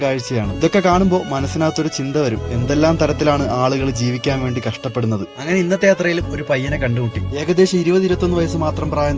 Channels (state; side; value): identical; both; correlation 1.00